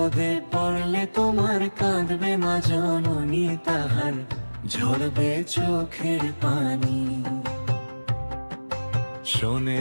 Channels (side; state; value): both; inverted; correlation -1.00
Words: পড়লে তোমার কাঁদবে মা জননী, তাহার ঝরবে চোখের পানি।